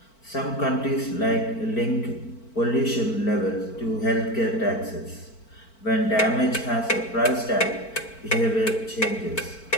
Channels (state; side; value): late; right; 4.5 ms